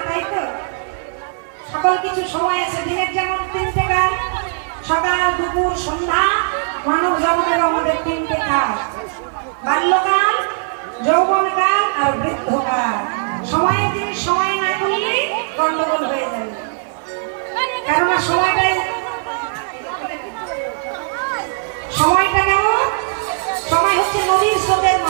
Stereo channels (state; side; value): silent; left; 63 dB below the other